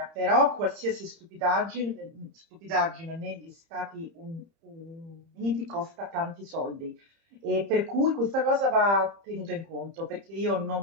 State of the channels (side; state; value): left; late; 30 ms